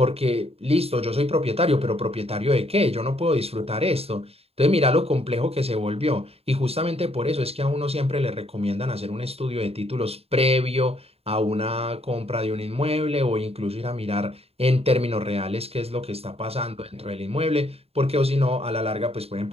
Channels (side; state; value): left; late; 0.29 ms